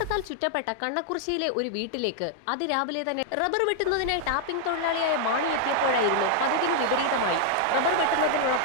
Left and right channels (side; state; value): both; different; correlation 0.00